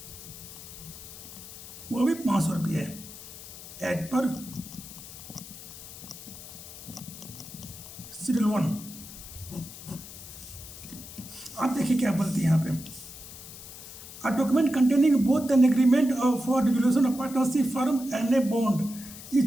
वो भी 500 रुपये है एज पर शेड्यूल 1। आप देखिए क्या बोलती है यहाँ पे, A document containing both an agreement for dissolution of partnership firm and a bond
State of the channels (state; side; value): noise; left; hiss, 14 dB below the sound